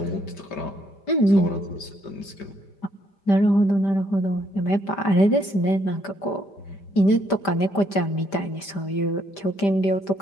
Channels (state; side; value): late; right; 5.1 ms